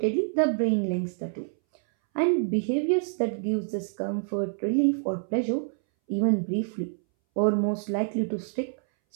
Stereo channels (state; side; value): silent; left; 60 dB below the other